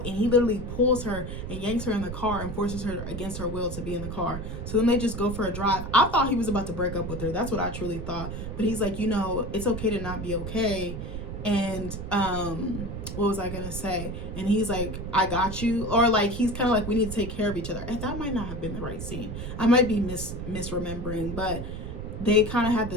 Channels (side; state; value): right; noise; rumble, 7 dB below the sound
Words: he literally pulls her and yanks her in the car and forces her against her will to be in the car. So then they just go for a drive. I thought he was about to break up with her. That's what I truly thought. But he's like, you know, it's okay to not be okay. And what was I gonna say? And he's like, I got you. Or like, he's kind of like, we need to take care of each other. And that might not have been the right scene. I might be misremembering, but they kind of had